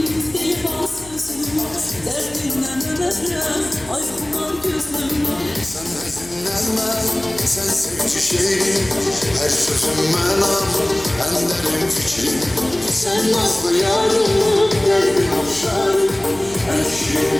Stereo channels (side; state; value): left; noise; hum, 21 dB below the sound